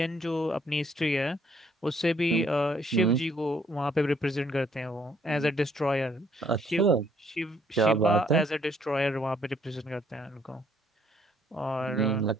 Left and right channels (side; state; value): both; normal; correlation 0.66